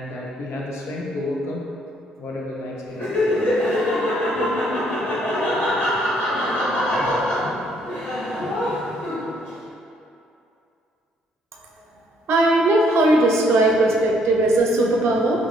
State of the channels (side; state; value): both; normal; correlation 0.67